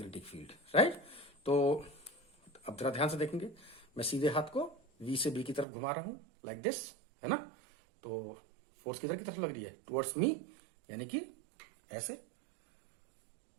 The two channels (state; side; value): drops out; left; at 5.7 s